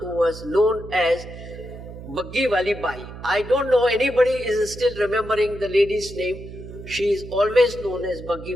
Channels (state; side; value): noise; right; hum, 13 dB below the sound